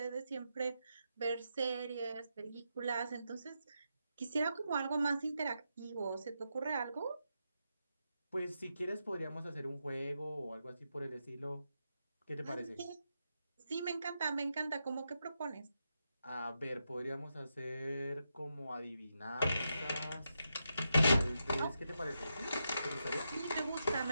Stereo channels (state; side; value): inverted; both; correlation -0.85